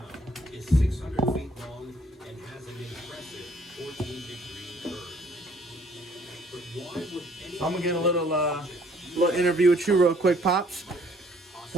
is 600 feet long and has an impressive 14-degree curve. But why would any I'm gonna get a little interview with you real quick, pops.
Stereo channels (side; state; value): both; normal; correlation 0.61